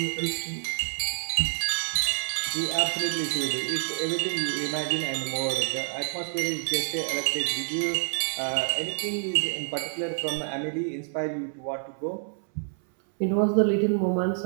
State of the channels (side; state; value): left; silent; 60 dB below the other